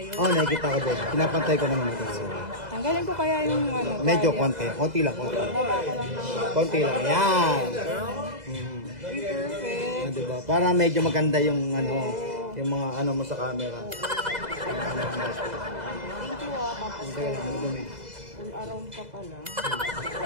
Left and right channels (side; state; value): left; late; 2.0 ms